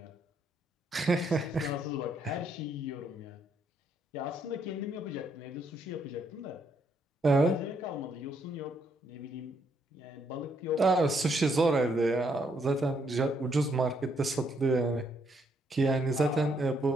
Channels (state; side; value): normal; both; correlation 0.73